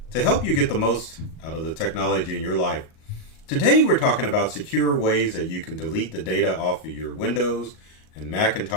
to help you get the most out of the technology in your life. Today we're talking about secure ways that you can delete the data off of your Windows and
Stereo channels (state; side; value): late; right; 38 ms